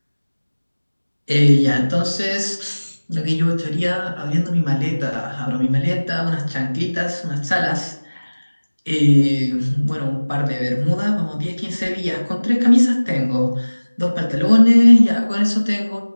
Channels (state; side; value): inverted; both; correlation -1.00